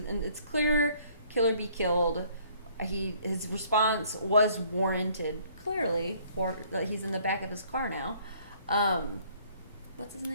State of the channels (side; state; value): both; inverted; correlation -0.60